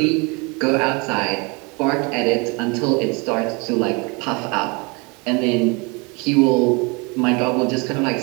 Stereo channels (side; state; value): left; quieter; 29.2 dB